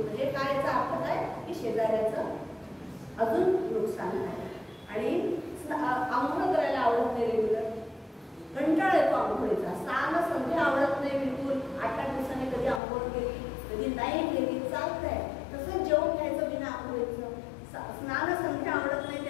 काय याचा अर्थ काय की शेजाऱ्याचं अजून नुकसान आहे. आणि आंघोळ करायला आवडत नाही रेग्युलर, कंटाळा येतो आंघोळीचा, स्नान संध्या आवडत नाही बिलकुल, 8-8 दिवसांनी कधी आंघोळ केली कधी नाही केली चालतंय, तसंच जेवण घ्यायचं बिना आंघोळीचं, स्नान संध्या आवडत नाही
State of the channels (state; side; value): drops out; right; at 12.8 s